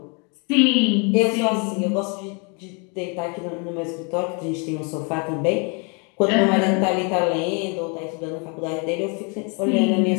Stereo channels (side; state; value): right; quieter; 34.8 dB